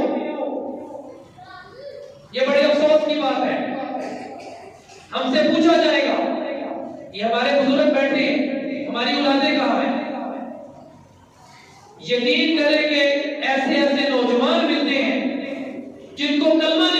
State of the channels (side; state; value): both; identical; correlation 1.00